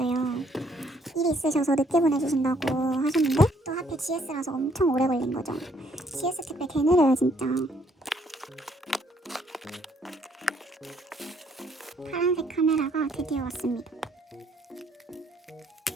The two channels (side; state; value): both; normal; correlation 0.67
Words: 일이 있으셔서 늦게 보내주신다고 하셨는데 또 하필 GS라서 엄청 오래 걸린 거죠. GS 택배 개 느려요 진짜. 파란색 카메라가 드디어 왔습니다.